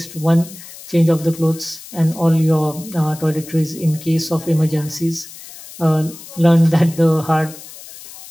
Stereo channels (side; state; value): left; noise; hiss, 17 dB below the sound